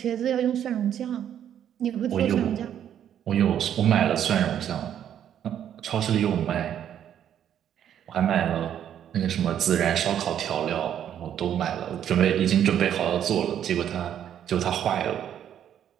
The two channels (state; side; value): quieter; left; 9.9 dB